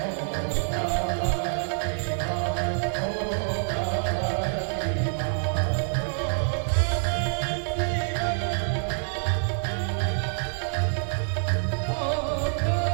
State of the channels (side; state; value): left; silent; 60 dB below the other